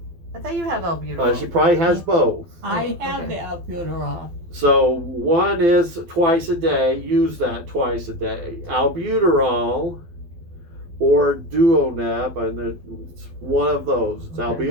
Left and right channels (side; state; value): left; late; 12 ms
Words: I thought you have albuterol. she probably has both. I Oh, have okay. the albuterol. So one is twice a day. Use that twice a day. Albuterol or Duoneb, and it's one of those. It's Okay.